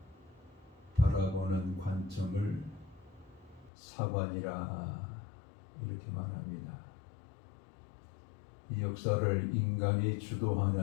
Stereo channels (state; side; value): drops out; right; at 3.7 s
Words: 바라보는 관점을 사관이라 이렇게 말합니다. 이 역사를 인간이